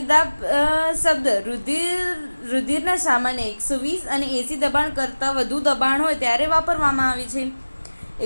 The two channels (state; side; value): inverted; both; correlation -1.00